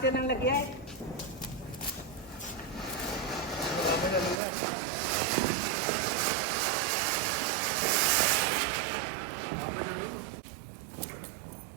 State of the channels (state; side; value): drops out; left; at 4.4 s